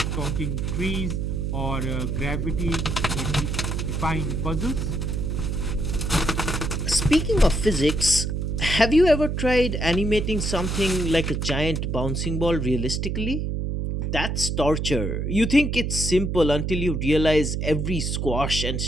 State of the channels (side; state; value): right; noise; hum, 1 dB below the sound